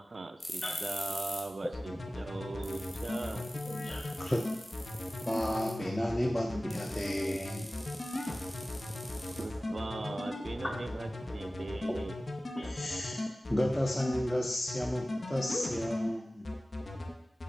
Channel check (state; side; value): normal; both; correlation 0.96